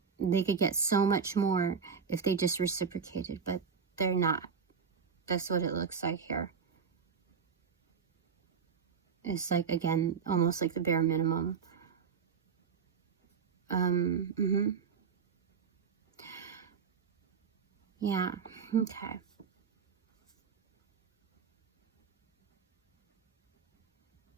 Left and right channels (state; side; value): quieter; left; 6.2 dB